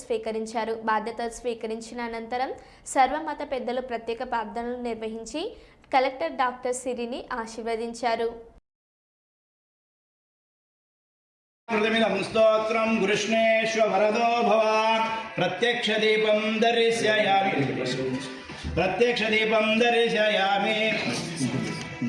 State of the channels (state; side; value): identical; both; correlation 1.00